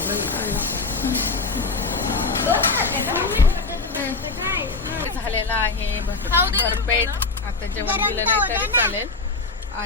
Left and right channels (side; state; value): right; quieter; 3.9 dB